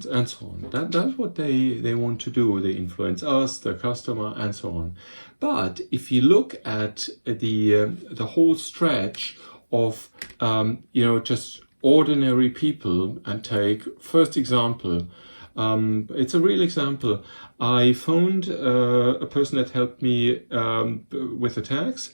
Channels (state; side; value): inverted; both; correlation -1.00